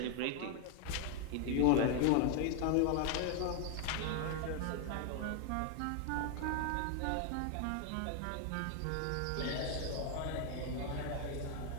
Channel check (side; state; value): both; different; correlation 0.00